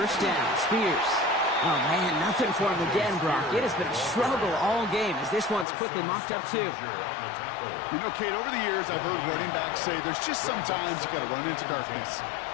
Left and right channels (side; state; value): right; drops out; at 5.7 s